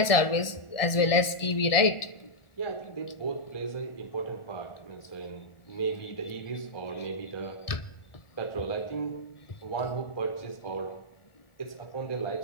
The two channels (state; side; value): late; right; 1.6 ms